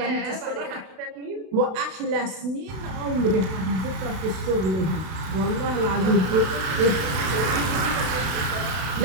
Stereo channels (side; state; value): left; late; 32 ms